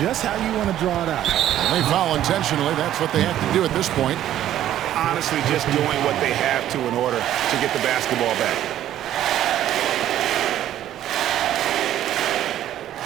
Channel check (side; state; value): left; quieter; 12.1 dB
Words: Just how you want to draw it out. They foul intentionally. That's what they have to do at this point. Honestly, just doing what they have to in order to get the basketball back.